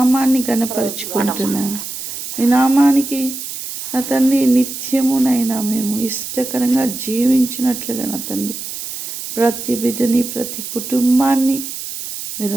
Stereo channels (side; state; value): right; noise; hiss, 8 dB below the sound